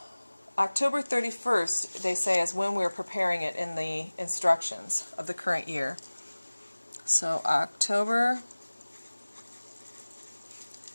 31st, they say, is when we're preparing it in the instructions of the current year. So October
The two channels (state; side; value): inverted; both; correlation -1.00